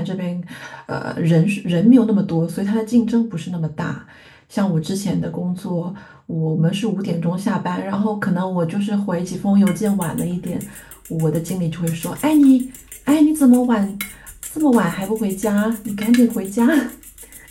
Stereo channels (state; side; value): identical; both; correlation 1.00